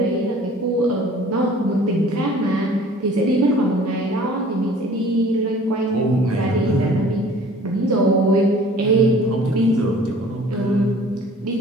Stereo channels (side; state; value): both; normal; correlation 0.50